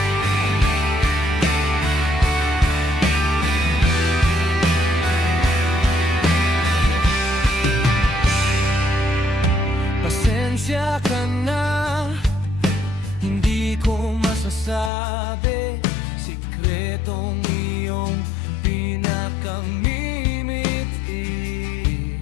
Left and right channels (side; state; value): right; drops out; at 14.9 s